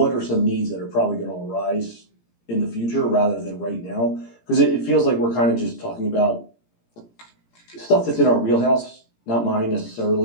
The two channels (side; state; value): right; late; 17 ms